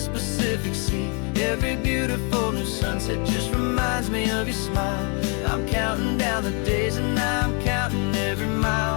Pacific Sea. Every beautiful new sunset just reminds me of your smile. I'm counting down the days and I'm counting every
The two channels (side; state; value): right; quieter; 36.4 dB